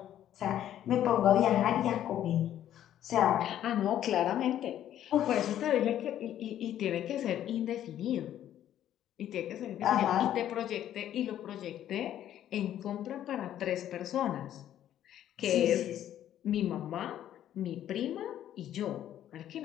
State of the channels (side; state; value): right; quieter; 11.4 dB